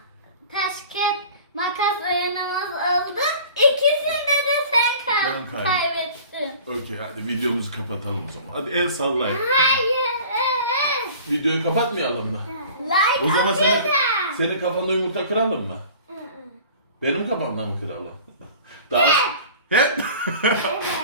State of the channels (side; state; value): both; inverted; correlation -0.44